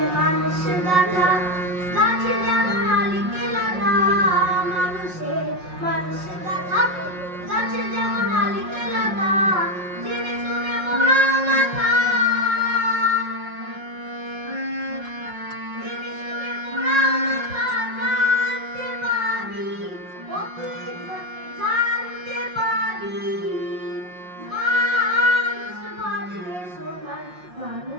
মানুষ গাথা গাছে যেমন আলিকে লাথা মানুষে মানুষ গাথা গাছে যেমন আলিকে লাথা জেনে শুনে মোরা মাথা জেনে শুনে মোরা মাথা জানতে পাবি ও তুই জানতে পাবি মানুষ বাজলে সোনার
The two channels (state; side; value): late; left; 5.5 ms